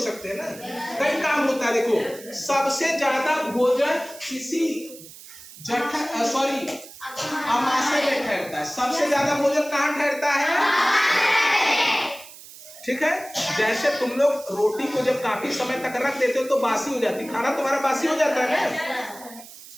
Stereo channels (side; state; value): right; noise; hiss, 17 dB below the sound